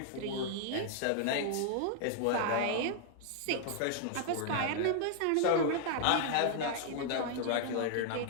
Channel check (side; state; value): both; different; correlation 0.00